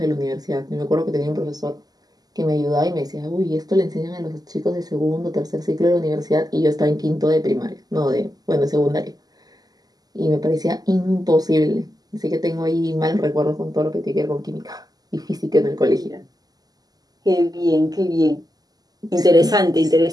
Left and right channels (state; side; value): late; left; 0.18 ms